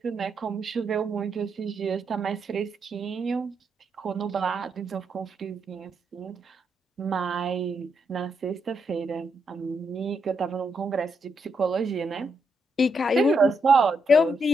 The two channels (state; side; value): normal; both; correlation 0.79